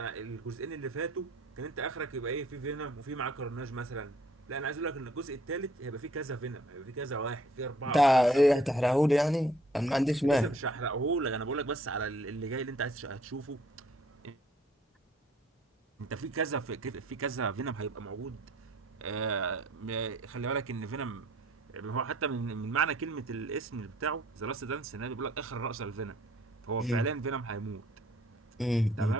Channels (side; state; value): both; normal; correlation 0.60